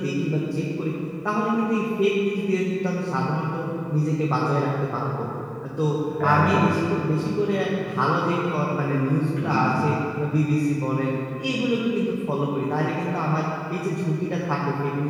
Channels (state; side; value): identical; both; correlation 1.00